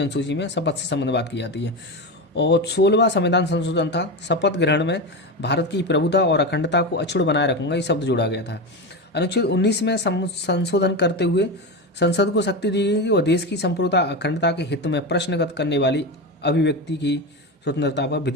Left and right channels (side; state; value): both; normal; correlation 0.18